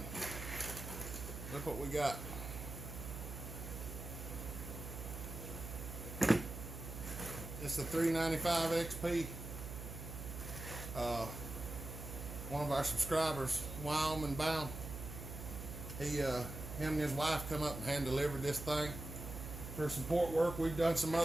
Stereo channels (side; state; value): right; noise; hum, 8 dB below the sound